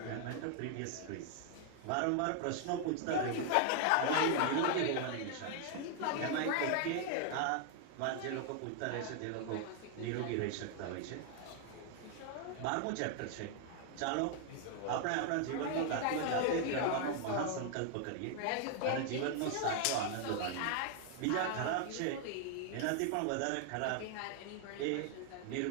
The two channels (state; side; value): different; both; correlation 0.00